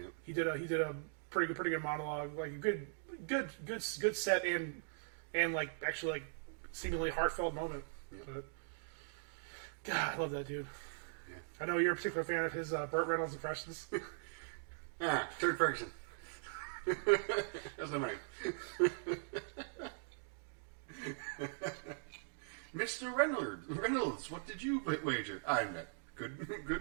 He did a pretty good monologue, like a good set and like actually like seemingly heartfelt moment. Yep. But God, I love that dude. Yeah. I know you're a particular fan of his Burt Reynolds impressions. Turd Ferguson. That's not my name. Mr. Reynolds, what did you wager? I'm that good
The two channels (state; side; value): silent; left; digital silence